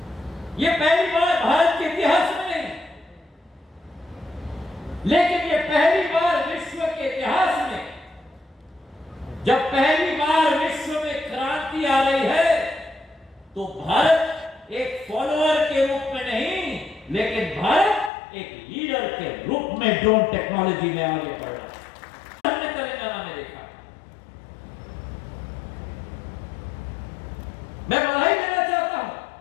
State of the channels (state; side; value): drops out; right; at 18.1 s